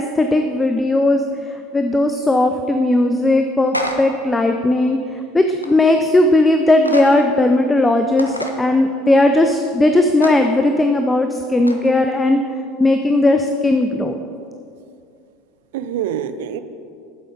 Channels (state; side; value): normal; both; correlation 0.76